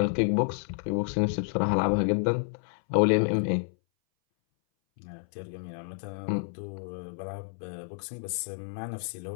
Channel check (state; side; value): silent; right; 58 dB below the other